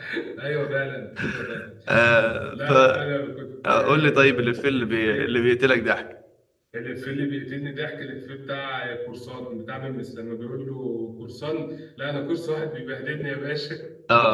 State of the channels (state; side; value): identical; both; correlation 1.00